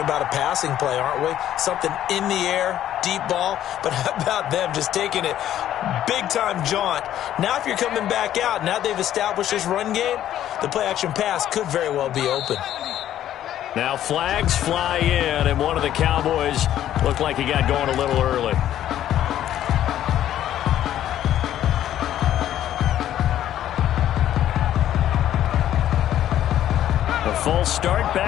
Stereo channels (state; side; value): quieter; right; 11.7 dB